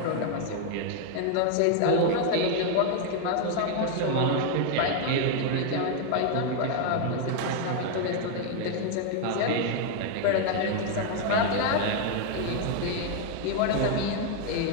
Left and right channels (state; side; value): different; both; correlation 0.00